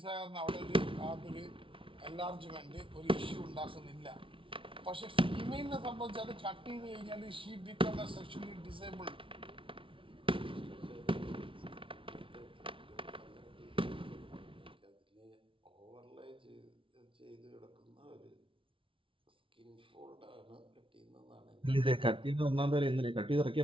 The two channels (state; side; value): late; left; 0.25 ms